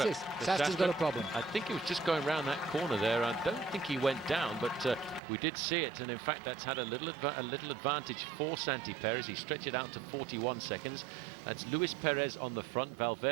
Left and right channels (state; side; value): drops out; left; at 5.2 s